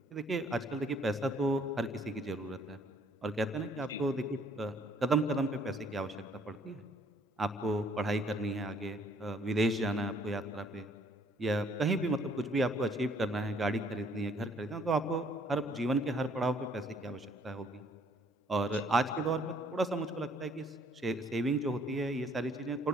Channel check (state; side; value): normal; both; correlation 0.62